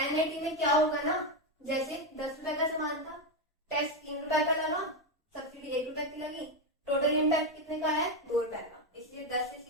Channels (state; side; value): normal; both; correlation 0.08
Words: NIT में क्या होगा ना, जैसे 10 रुपए का सामान था, टैक्स 3 रुपए का लगा, सब्सिडी 1 रुपए की लगी, टोटल इम्पैक्ट कितने का है 2 रुपए का, इसलिए 10 से